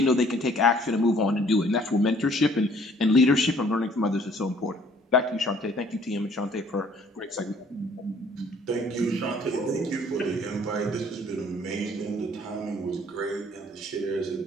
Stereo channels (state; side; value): normal; both; correlation 0.58